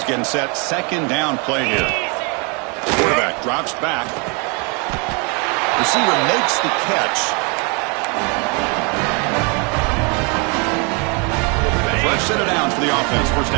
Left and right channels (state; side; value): quieter; left; 33.2 dB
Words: getting set. 2nd down play here. Quarterback drops back. Receiver makes the catch. Fresh set of downs for the offense. 1st